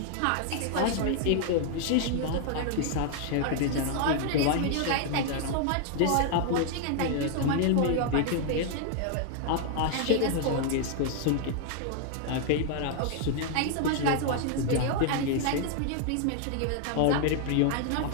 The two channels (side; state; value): both; different; correlation 0.00